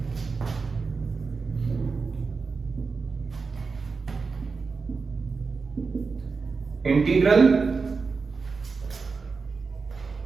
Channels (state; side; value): quieter; left; 4.6 dB